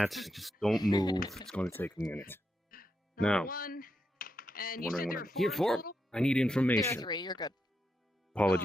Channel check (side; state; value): both; normal; correlation 0.84